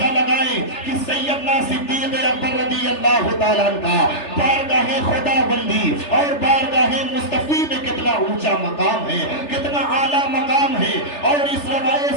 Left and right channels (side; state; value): right; late; 3.3 ms